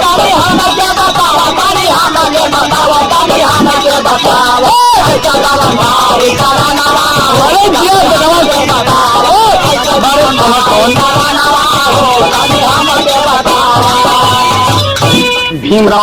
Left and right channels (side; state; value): both; identical; correlation 1.00